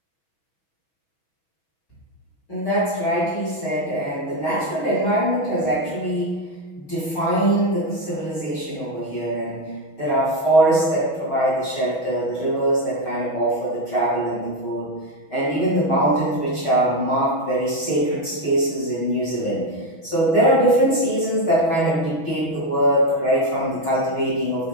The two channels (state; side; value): late; right; 6.2 ms